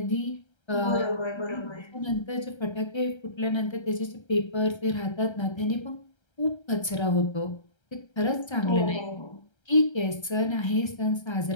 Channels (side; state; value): right; late; 1.3 ms